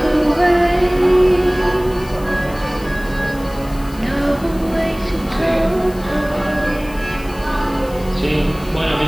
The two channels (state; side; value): noise; left; hiss, 21 dB below the sound